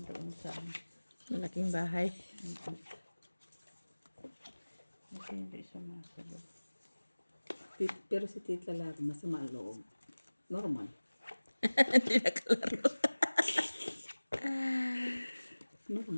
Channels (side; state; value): both; inverted; correlation -1.00